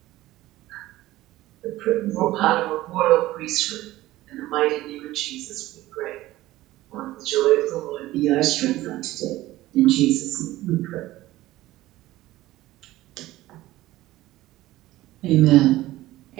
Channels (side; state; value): left; quieter; 16.5 dB